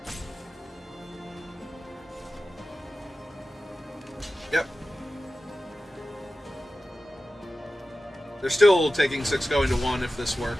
Yep. They're still taking 6 going to 1 if this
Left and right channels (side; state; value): both; normal; correlation 0.94